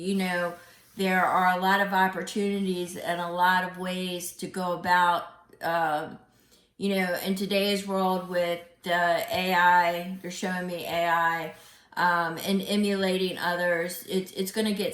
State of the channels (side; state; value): both; identical; correlation 1.00